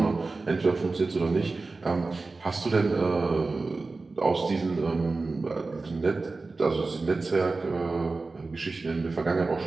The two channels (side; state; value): left; quieter; 3.7 dB